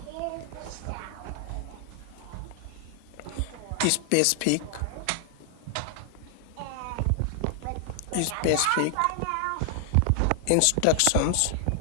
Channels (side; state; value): both; different; correlation 0.00